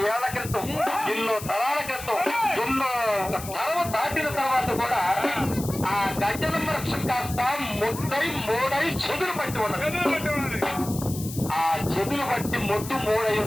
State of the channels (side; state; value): left; noise; hiss, 12 dB below the sound